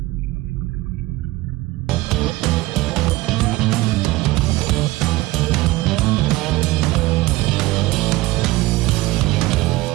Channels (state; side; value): quieter; left; 19.2 dB